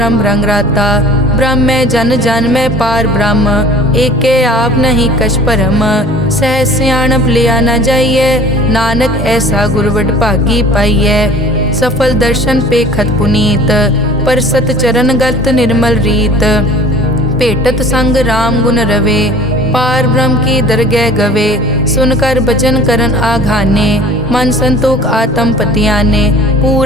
रंगराता, ब्रह्म में जन जन में पार ब्रह्म, एके आप नहीं कछ परम, सहज सियाणप लिया न जाइए, नानक ऐसा गुरवड भागी पाइए, सफल दर्शन पे खत पुनीत, पर सत चरण गत निर्मल रीत, भेटत संग राम गुण रवे, पार ब्रह्म की दरगह गवे, सुनकर बचन करन आघाने, मन संतोख आत्म पतियाने,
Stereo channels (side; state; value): both; normal; correlation 0.46